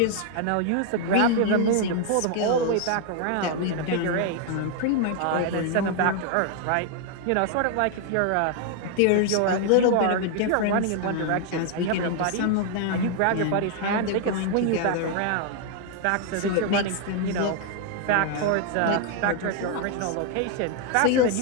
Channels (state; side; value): different; both; correlation 0.00